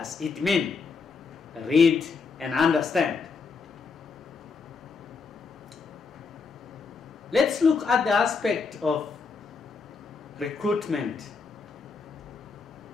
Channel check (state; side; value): quieter; right; 4.9 dB